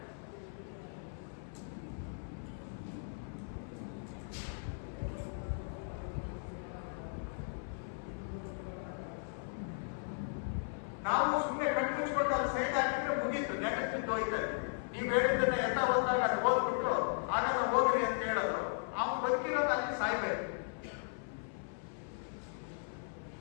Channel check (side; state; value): right; silent; 53 dB below the other